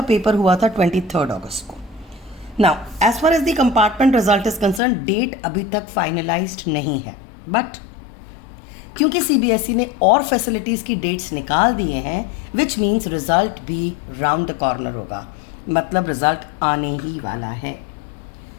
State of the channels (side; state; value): right; drops out; at 4.8 s